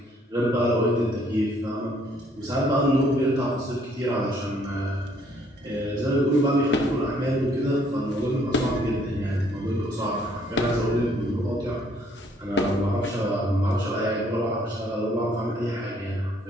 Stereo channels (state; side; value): normal; both; correlation 0.64